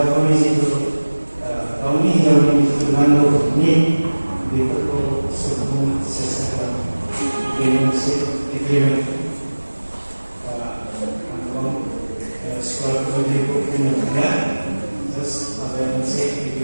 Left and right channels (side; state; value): both; inverted; correlation -1.00